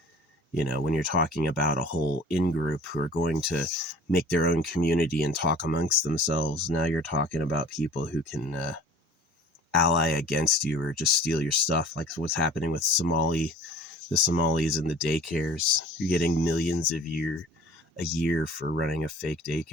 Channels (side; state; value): both; normal; correlation 0.46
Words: You know, when you're talking about a whole in-group who are going to make their own community and talk amongst themselves, now you're talking about people who can ally against you or just steal your stuff, like what's happening with the Somalis and the daycares. You're getting millions a year for running a fake